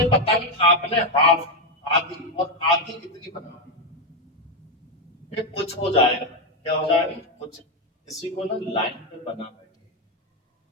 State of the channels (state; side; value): normal; both; correlation 0.06